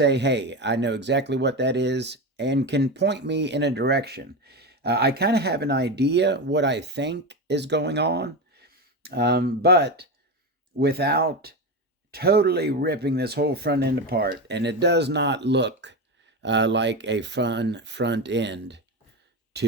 hey, I know exactly what that is, and can point me in a direction. I kind of have an idea what I think is going on, but without totally ripping this whole front end apart. And it does not look like a fun front end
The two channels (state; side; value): normal; both; correlation 0.17